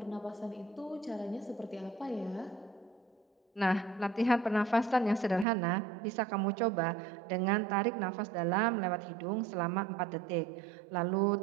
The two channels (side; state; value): left; drops out; at 5.5 s